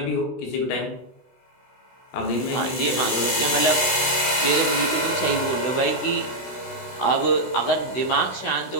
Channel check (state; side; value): late; right; 16 ms